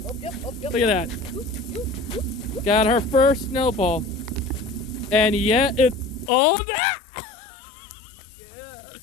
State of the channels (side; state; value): right; drops out; at 6.3 s